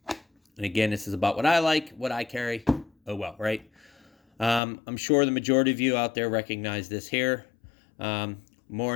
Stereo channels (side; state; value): right; drops out; at 4.6 s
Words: And again, this is about what I like, what I carry. Oh well, right? I'm sure the majority of you out there recognize this here.